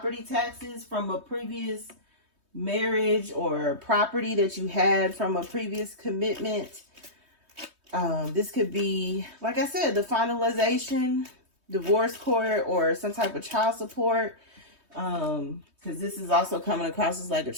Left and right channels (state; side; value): late; left; 3.2 ms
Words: taxes from a previous marriage, or property that you had from a previous commitment. This could be, like I said, the finalization, divorce court, or some type of child support. Because this is also coming across as like a